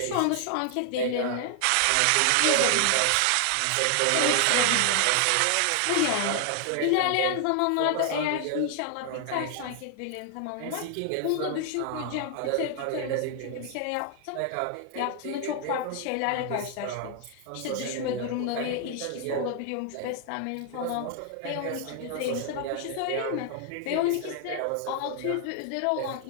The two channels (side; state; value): both; different; correlation 0.00